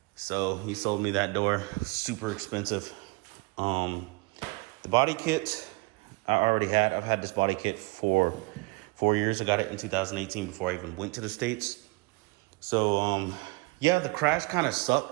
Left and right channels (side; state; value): left; quieter; 26.7 dB